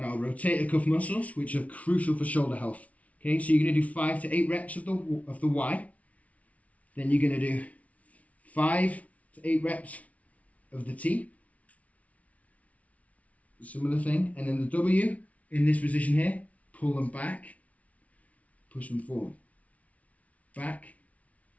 our rotator cuff muscles, which are crucial for shoulder health. Okay, so you're going to do 5 to 8 reps of the Y. Then you're going to do 5 to 8 reps of the T. Similar thing. And then the W, in this position here, pull them back, push them forward. Back,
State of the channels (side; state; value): right; late; 0.067 ms